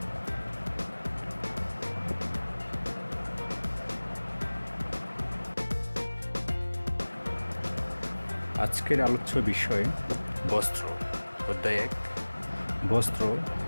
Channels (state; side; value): inverted; both; correlation -1.00